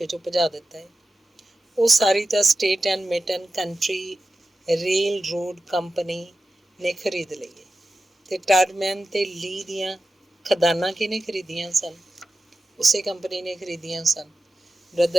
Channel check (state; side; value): normal; both; correlation 0.93